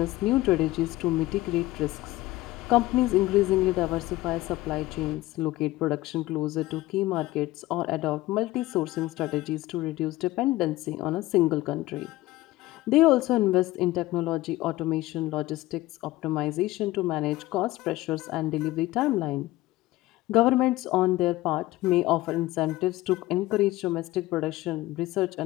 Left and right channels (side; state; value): right; quieter; 17.7 dB